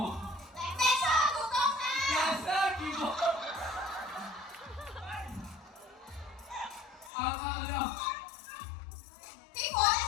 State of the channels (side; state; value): right; drops out; at 7.1 s